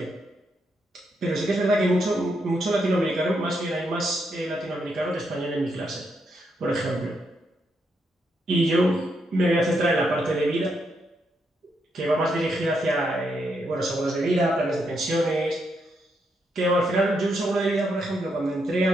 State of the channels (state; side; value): normal; both; correlation 0.79